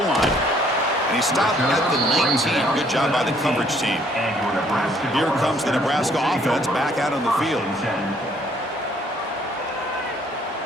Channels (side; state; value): both; normal; correlation 0.64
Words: And he stopped at the 19. Good job by the coverage team. Here comes the Nebraska offense back out on the field.